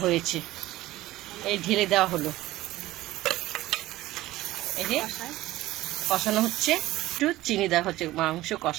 হয়েছে। এই ঢেলে দেওয়া হলো, এই যে কষানো হচ্ছে। একটু চিনি দেওয়া হচ্ছে মাংস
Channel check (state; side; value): quieter; left; 16.7 dB